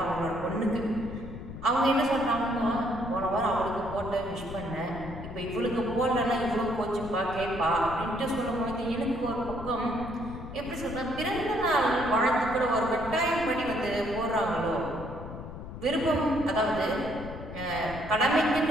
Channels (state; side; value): noise; left; rumble, 11 dB below the sound